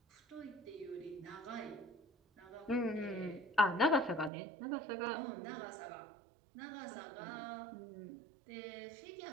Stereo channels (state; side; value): drops out; left; at 4.3 s